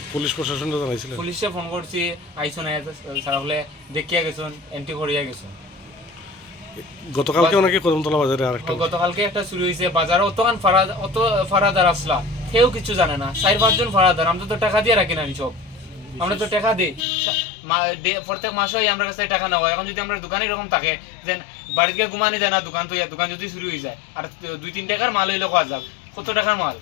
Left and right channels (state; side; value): drops out; right; at 17.1 s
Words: পুলিশ প্রশাসনটা জানাইছিলেন? পুলিশে ফোন করছি, আইসো না সারা হলে দেখিয়া গেছেন, এন্ট্রি করিয়া গেছেন। গতকালকে নাকি কদমতলা বাজারে আরেকটা গতকালকে একটা চুরি হয়েছে বাজারে। অত ফারাদার আসলা, কেউ কিছু জানে না, 4-5 জন ফারাদার। আমরা তো টাকা দিয়ে রাখি না সব, আমরা তো টাকা দিই প্রত্যেক মাসে আমরা কাছে টাকা নেওয়া। এখন যদি আমরা দোকানে এরকম থাকে যে বাড়িতে ঘুমানি যায় না, দোকান যদি চুরি হয়ে যায়, আর 2-3 টাকার মাল হইলে খাওয়া যাক, কত টাকার মাল।